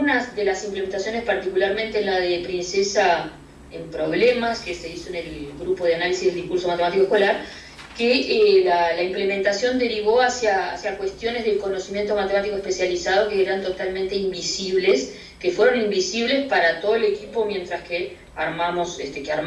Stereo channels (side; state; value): both; identical; correlation 1.00